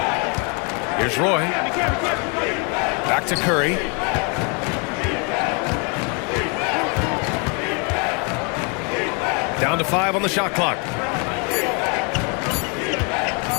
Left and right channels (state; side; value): quieter; right; 34.6 dB